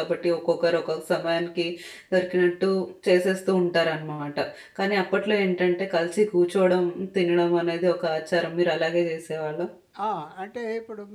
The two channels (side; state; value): both; identical; correlation 1.00